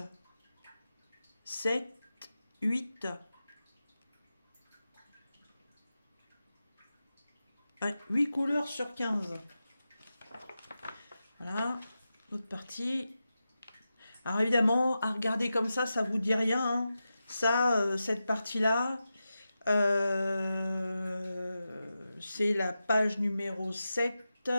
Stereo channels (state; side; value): inverted; both; correlation -0.91